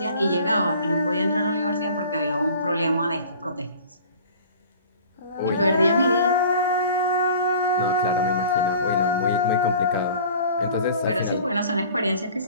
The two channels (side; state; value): both; inverted; correlation -0.45